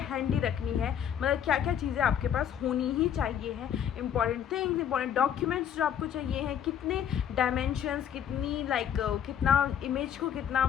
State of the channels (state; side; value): quieter; right; 9.1 dB